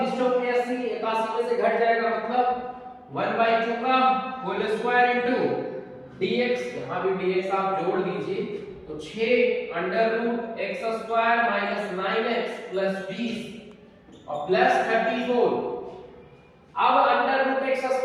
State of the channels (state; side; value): identical; both; correlation 1.00